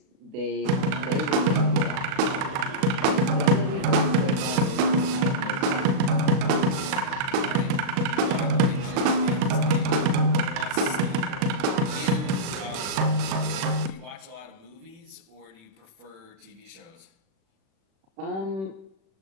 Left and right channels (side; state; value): left; late; 37 ms